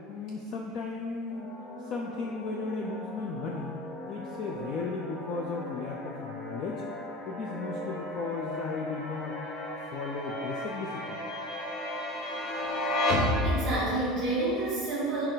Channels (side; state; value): both; normal; correlation 0.33